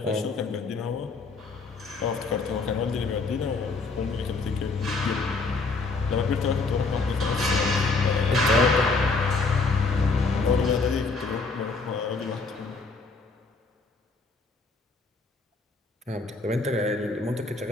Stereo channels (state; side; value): quieter; right; 4.0 dB